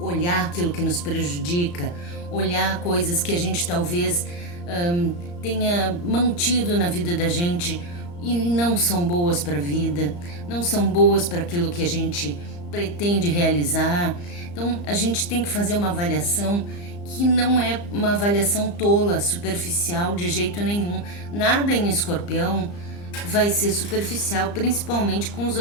aquilo que nos prejudica, olhar coisas que a gente talvez tenha mantido na vida da gente e não são boas para a vida, não são boas para aquilo que a gente pretende realizar. Então a gente tem que fazer uma avaliação que não é uma avaliação tola, superficial de jeito nenhum. Nada em Escorpião vai ser superficial, principalmente com os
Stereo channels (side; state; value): right; late; 34 ms